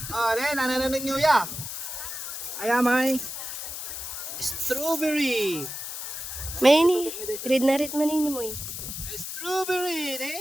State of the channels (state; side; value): noise; left; hiss, 7 dB below the sound